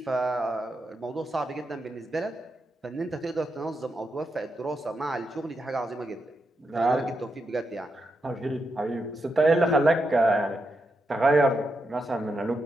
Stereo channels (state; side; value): normal; both; correlation 0.85